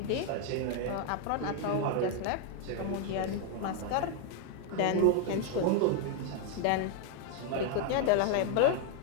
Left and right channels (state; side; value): different; both; correlation 0.00